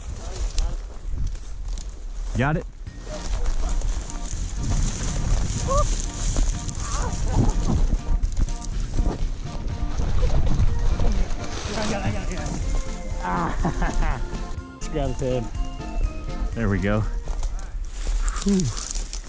Got it? I got it. Just grab his head. There we go. Whew.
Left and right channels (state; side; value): identical; both; correlation 1.00